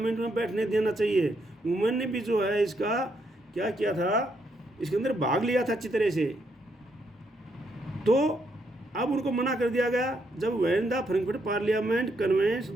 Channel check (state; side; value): normal; both; correlation 0.76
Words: में बैठने देना चाहिए। वुमेन ने भी जो है इसका क्या किया था, इसके अंदर भाग लिया था अच्छी तरह से। तो अब उनको मना कर दिया गया जब when the Frankfurt parliament convenes